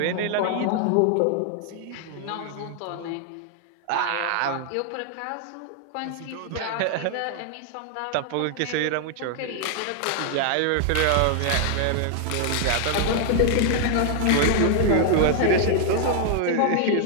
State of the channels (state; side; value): different; both; correlation 0.00